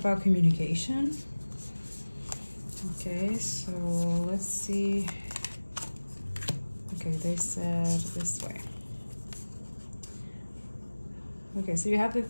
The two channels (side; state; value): both; inverted; correlation -1.00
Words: communication. Okay, so let's see. Okay, they said this way. Okay, so you have the